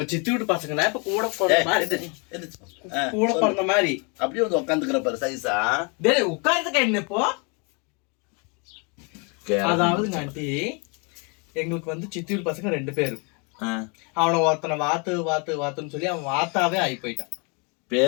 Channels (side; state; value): right; quieter; 33.4 dB